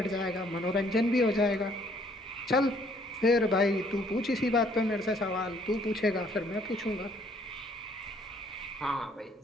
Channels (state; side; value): normal; both; correlation 0.63